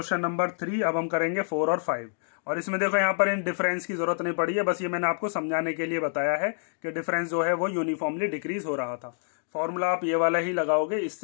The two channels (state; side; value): silent; right; digital silence